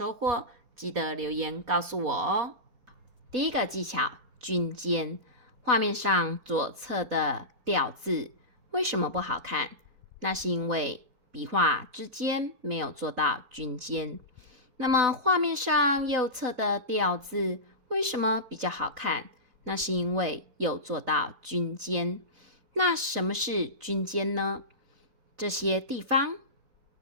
获，记得留言告诉我哦。第一个技巧，均间。画面上左侧的吊字为什么不好看？那是因为笔画之间没有做到均间。那么画面上右侧的吊字为什么比较好看？那是因为有做到均间。那什么是均间呢？这些地方，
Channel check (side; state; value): left; late; 4.0 ms